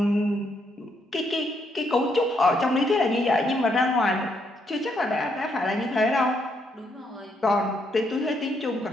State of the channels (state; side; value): normal; both; correlation 0.75